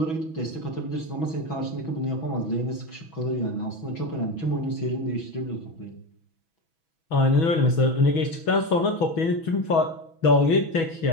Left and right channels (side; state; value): right; late; 6.1 ms